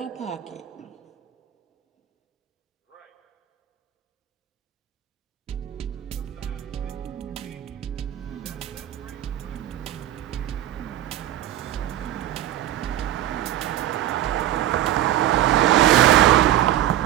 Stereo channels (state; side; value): quieter; left; 12.7 dB